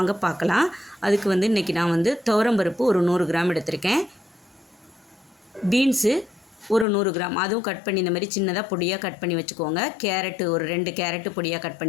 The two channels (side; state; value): right; drops out; at 6.9 s